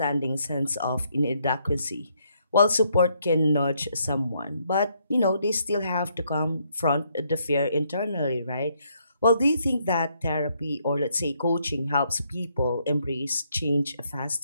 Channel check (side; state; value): both; inverted; correlation -0.73